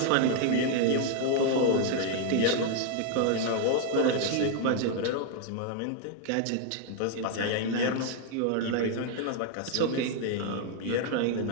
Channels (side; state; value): both; different; correlation 0.00